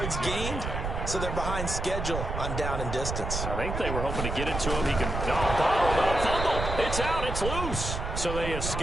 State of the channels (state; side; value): noise; right; rumble, 4 dB below the sound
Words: gained, so they're behind schedule on down and distance. I think they were hoping to get it to him. He can bottled up, fumble. It's out. It's loose. So they